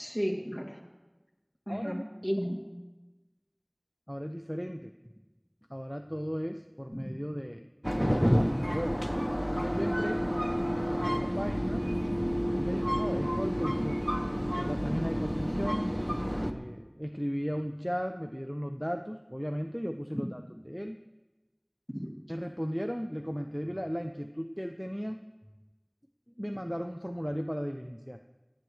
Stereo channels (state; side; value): identical; both; correlation 1.00